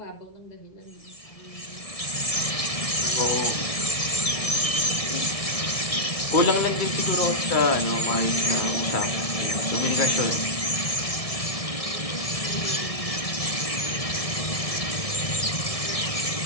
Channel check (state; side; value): late; right; 1.6 ms